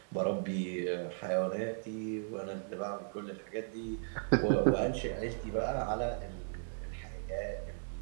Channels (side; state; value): left; silent; digital silence